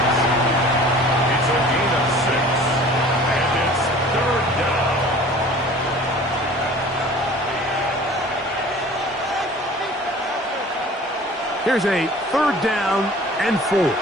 Here's a 3rd down and 4.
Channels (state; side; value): normal; both; correlation 0.46